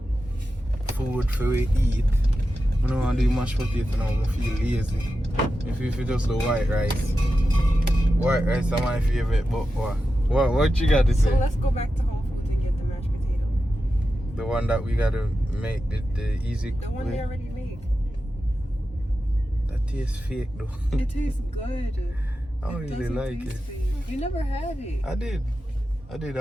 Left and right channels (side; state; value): both; normal; correlation 0.91